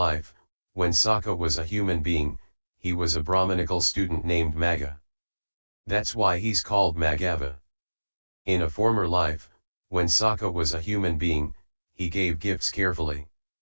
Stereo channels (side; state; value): both; inverted; correlation -1.00